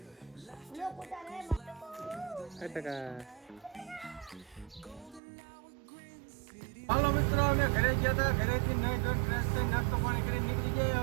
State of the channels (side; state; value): left; drops out; at 5.2 s